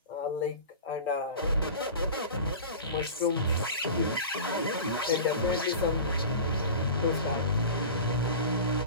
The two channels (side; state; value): both; inverted; correlation -0.34